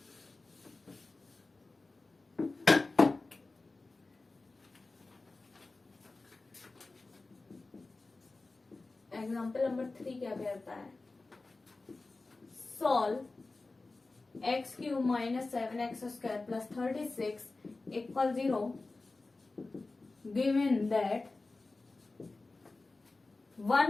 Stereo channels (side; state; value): right; quieter; 3.4 dB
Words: एग्जाम्पल नंबर 3 क्या कहता है, solve x cube minus 7x square plus 36 equal 0 given that